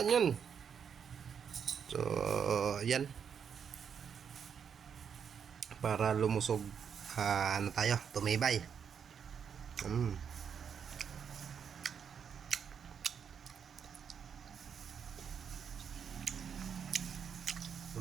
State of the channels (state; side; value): quieter; left; 7.3 dB